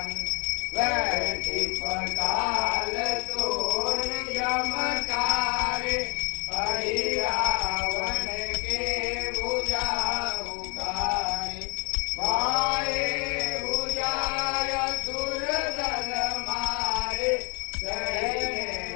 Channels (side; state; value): right; quieter; 34.2 dB